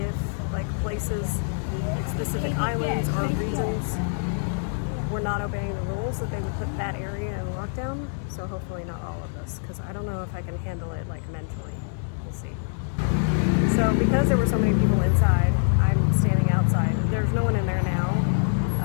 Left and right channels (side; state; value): right; silent; digital silence